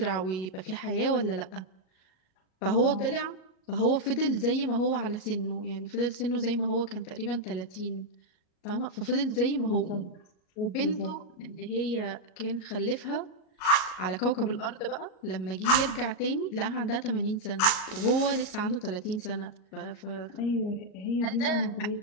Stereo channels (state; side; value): late; right; 38 ms